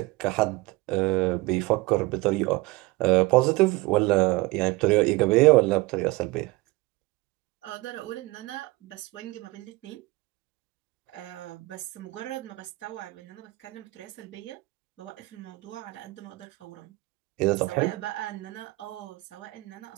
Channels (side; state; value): left; quieter; 21.7 dB